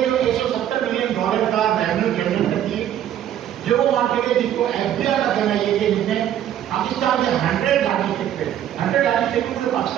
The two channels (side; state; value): left; quieter; 10.9 dB